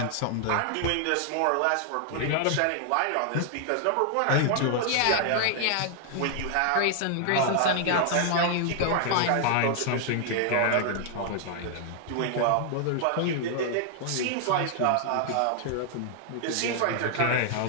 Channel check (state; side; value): different; both; correlation 0.00